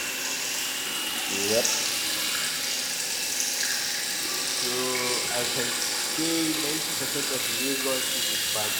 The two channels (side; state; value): both; identical; correlation 1.00